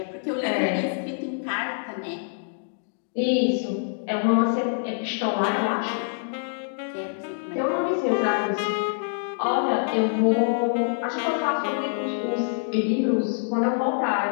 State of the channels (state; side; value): silent; right; digital silence